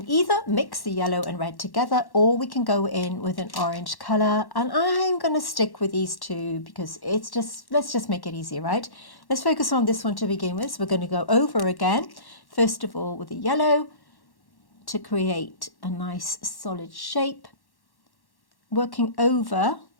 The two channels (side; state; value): right; late; 1.1 ms